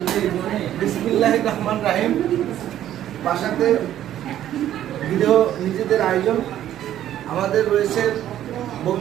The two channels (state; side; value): quieter; left; 11.8 dB